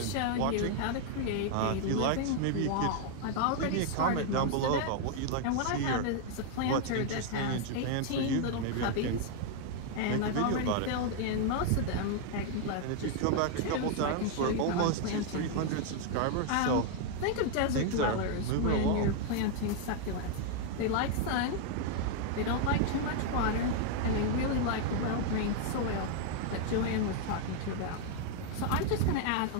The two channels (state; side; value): different; both; correlation 0.00